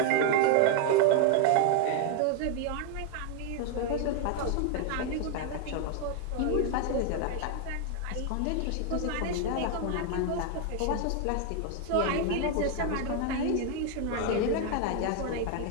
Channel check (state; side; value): different; both; correlation 0.01